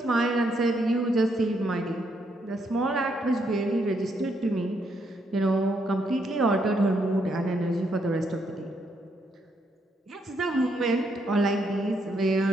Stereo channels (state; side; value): normal; both; correlation 0.75